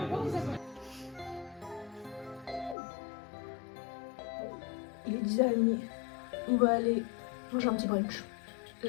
Il est 10h30. On va aller manger un petit brunch.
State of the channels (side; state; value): right; drops out; at 2.8 s